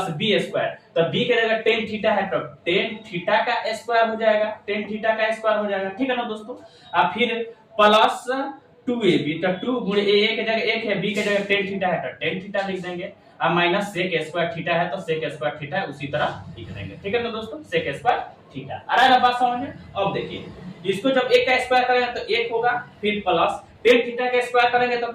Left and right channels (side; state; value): both; identical; correlation 1.00